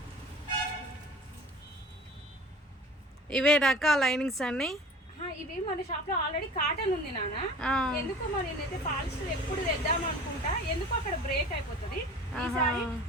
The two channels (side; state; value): both; normal; correlation 0.42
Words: ఇవే రకాల లైనింగ్స్ అన్ని. ఇవి మన షాప్ లో ఆల్రెడీ కాటన్ ఉంది నాన్న. ఎందుకో మరి నేనైతే పాలిస్టర్ ఎప్పుడు తెద్దాం అనుకుంటా, ఎందుకో అక్కడ బ్రేక్ అయిపోతుంది. ఈసారి